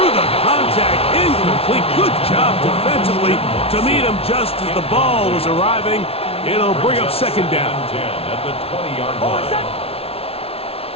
the contact. Incomplete. Good job defensively to meet him just as the ball was arriving. It'll bring up second down. 10 at the 20-yard line.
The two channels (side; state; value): right; late; 0.28 ms